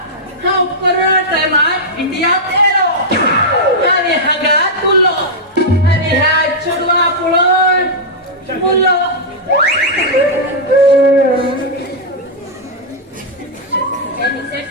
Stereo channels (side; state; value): both; normal; correlation -0.06